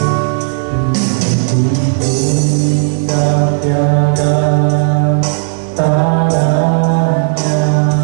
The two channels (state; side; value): silent; left; digital silence